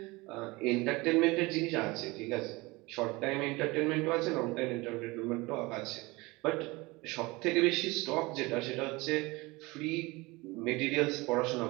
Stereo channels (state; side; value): quieter; left; 23.1 dB